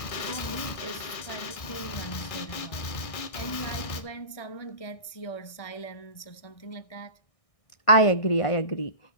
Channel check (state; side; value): late; right; 1.6 ms